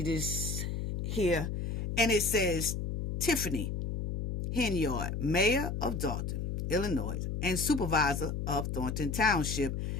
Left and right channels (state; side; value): noise; left; hum, 3 dB below the sound